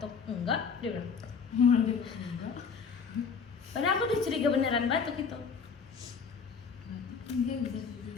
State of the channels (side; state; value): right; quieter; 5.7 dB